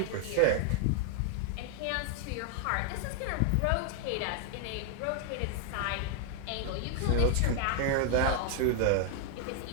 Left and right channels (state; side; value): different; both; correlation 0.00